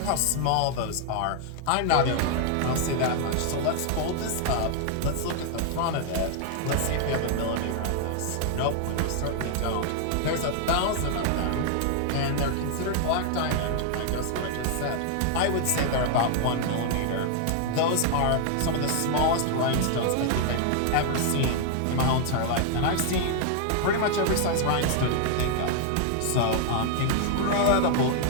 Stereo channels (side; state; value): both; different; correlation 0.00